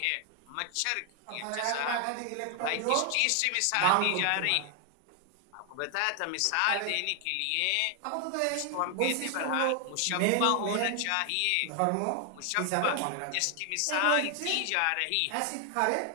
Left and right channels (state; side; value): different; both; correlation 0.00